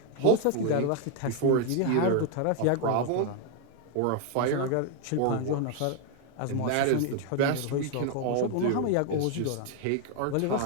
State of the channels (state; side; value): different; both; correlation 0.00